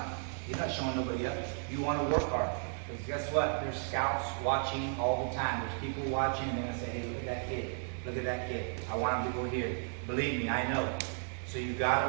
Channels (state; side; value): silent; left; 55 dB below the other